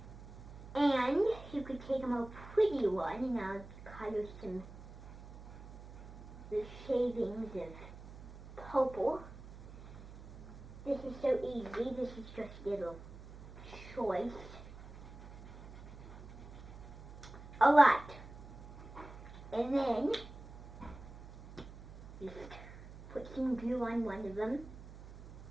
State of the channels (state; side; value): noise; right; hum, 15 dB below the sound